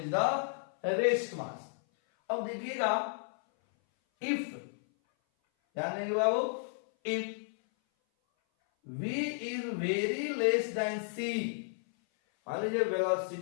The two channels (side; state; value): right; silent; 56 dB below the other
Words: the rest mass. अब देखिएगा if, ध्यान देंगे बाबू, if v is very less then c, मान लीजिए